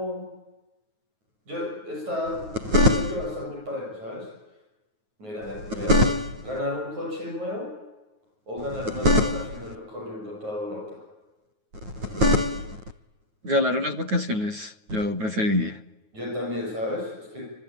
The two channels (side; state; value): left; late; 9.4 ms